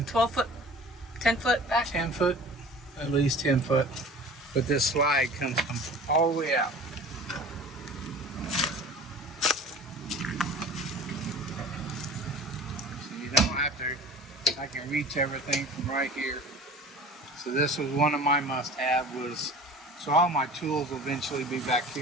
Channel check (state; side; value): normal; both; correlation 0.42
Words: 12 foot, 10 foot back. 10 foot, at least 10 foot. But this slide comes all the way out. So you don't have to, I can reach everything from right here. So this was one of my must-have was, so all my tools will eventually be back